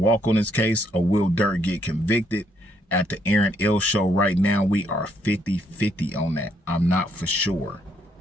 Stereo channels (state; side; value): normal; both; correlation 0.72